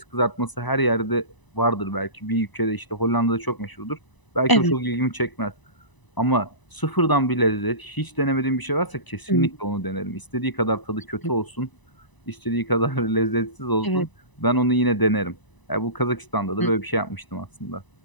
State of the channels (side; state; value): right; late; 1.0 ms